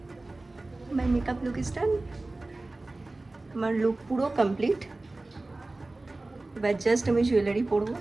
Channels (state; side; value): quieter; left; 3.0 dB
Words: মাই মেকআপ লুক ইজ ডান। আমার লুক পুরো কমপ্লিট। এবার জাস্ট আমি জুয়েলারি পরবো।